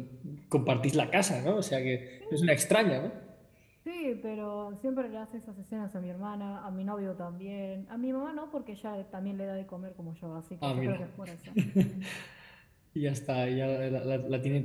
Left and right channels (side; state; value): both; identical; correlation 1.00